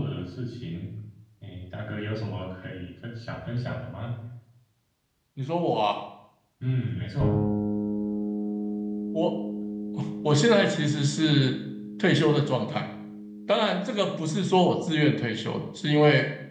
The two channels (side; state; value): both; identical; correlation 1.00